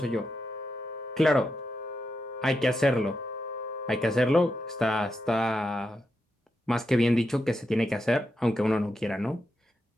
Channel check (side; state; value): both; normal; correlation 0.86